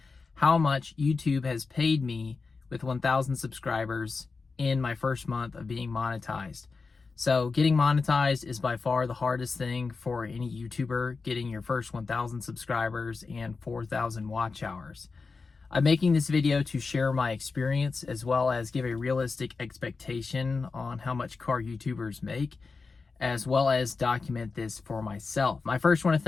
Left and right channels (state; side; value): quieter; right; 4.4 dB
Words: how much YouTube has paid me with 1,000 subscribers in my first month of being monetized. So getting monetized is by far the hardest thing for any YouTuber, getting your first 1,000 subscribers and 4,000 watch hours. I'm making this video to share my experience as well as give a realistic expectation on how much car YouTubers make, as well as document this for myself. I first want to